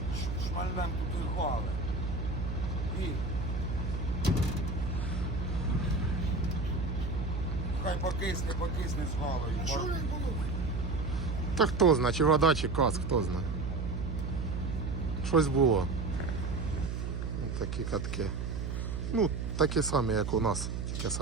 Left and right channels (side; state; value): right; noise; hum, 3 dB below the sound